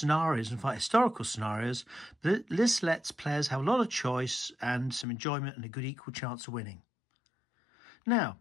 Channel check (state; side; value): drops out; right; at 5.1 s